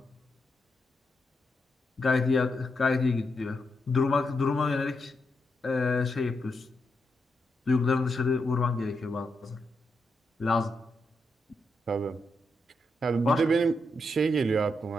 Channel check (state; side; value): normal; both; correlation 0.83